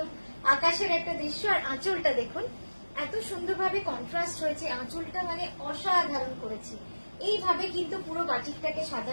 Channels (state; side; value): inverted; both; correlation -1.00